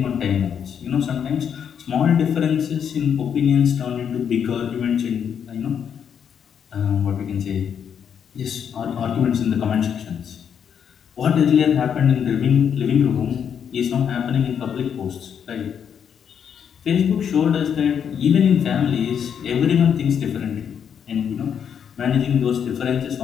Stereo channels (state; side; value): quieter; right; 7.9 dB